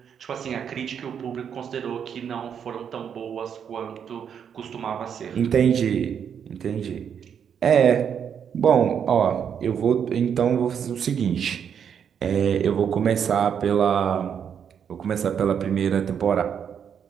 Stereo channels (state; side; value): quieter; left; 7.9 dB